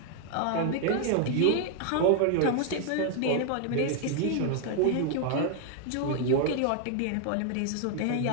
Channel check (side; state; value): both; different; correlation 0.00